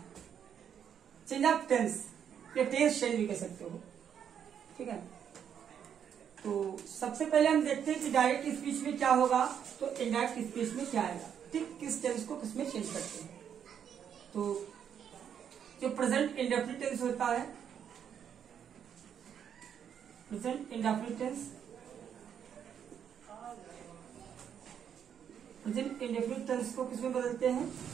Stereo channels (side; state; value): left; quieter; 8.4 dB